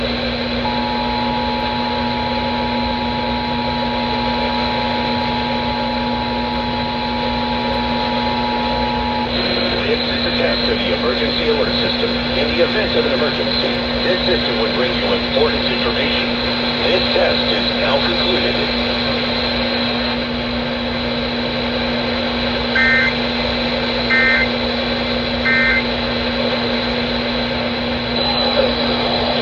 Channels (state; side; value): identical; both; correlation 1.00